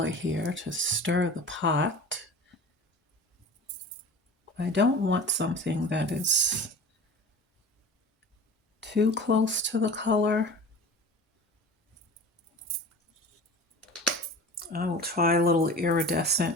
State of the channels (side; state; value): both; normal; correlation 0.37